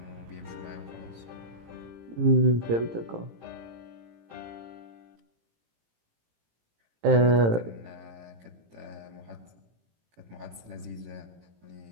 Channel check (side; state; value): left; late; 18 ms